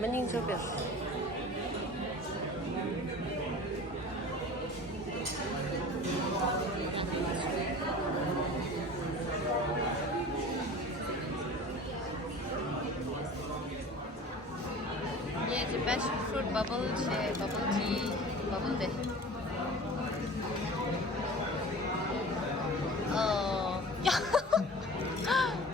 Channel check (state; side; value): normal; both; correlation 0.39